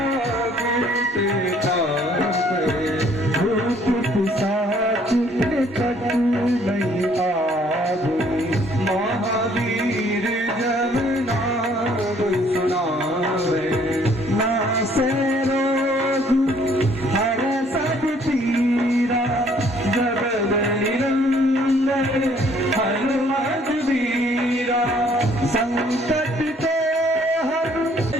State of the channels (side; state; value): both; normal; correlation 0.62